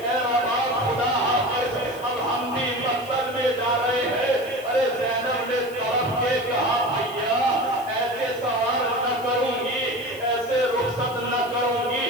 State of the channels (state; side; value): noise; left; hiss, 20 dB below the sound